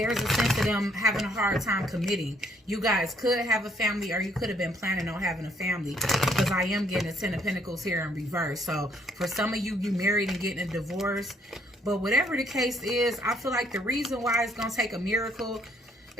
a sense of them having a hard time committing. You guys could have a family or you could have been planning on having a family because I am getting a Ten of Pentacles here in reverse. So, for some of you, you married and getting a divorce. But whatever the case is, I feel like the reason why it's going to take a miracle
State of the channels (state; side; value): normal; both; correlation 0.67